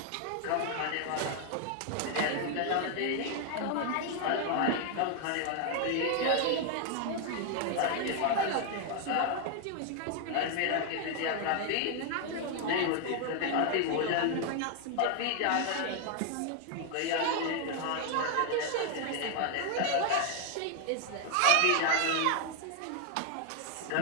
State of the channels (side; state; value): both; different; correlation 0.00